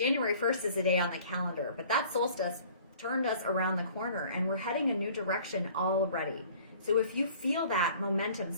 1st is a day on the calendar, but that solstice turned us around the corner and we're heading a new direction already. So if you feel that momentum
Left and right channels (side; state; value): both; inverted; correlation -0.51